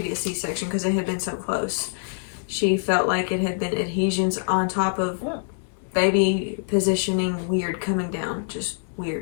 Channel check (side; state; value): right; silent; 62 dB below the other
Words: C-section because they had been so close. She felt like it had been adhesions on top of baby positioning weird coming down, just